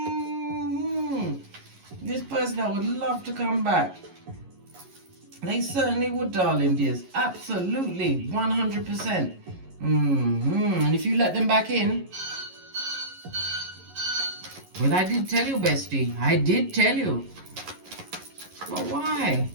This person, I would love to come back. They certainly would, darling dears. Absolutely, 100%. And if you let them back in, well, I did tell you, bestie. I did tell you. But why?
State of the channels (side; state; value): left; late; 11 ms